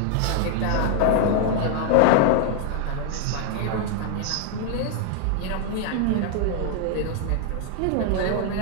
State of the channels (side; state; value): both; different; correlation 0.00